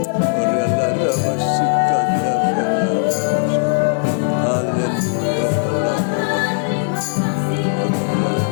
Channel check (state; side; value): silent; right; digital silence